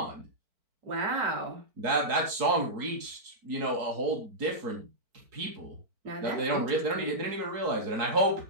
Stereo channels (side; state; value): left; late; 4.5 ms